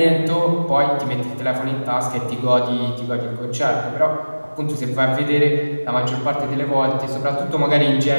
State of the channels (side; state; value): both; inverted; correlation -1.00